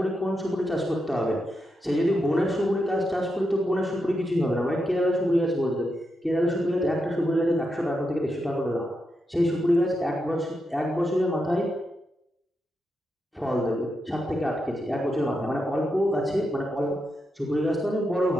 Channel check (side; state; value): both; normal; correlation 0.85